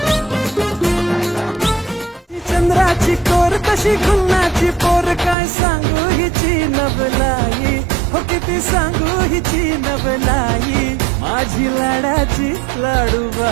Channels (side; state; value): left; drops out; at 5.4 s